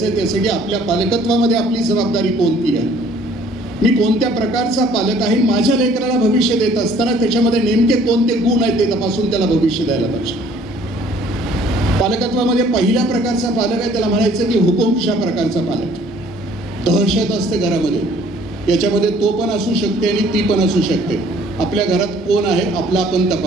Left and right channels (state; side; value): normal; both; correlation 0.57